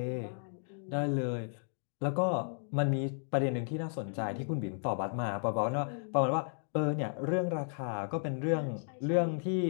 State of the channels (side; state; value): right; silent; digital silence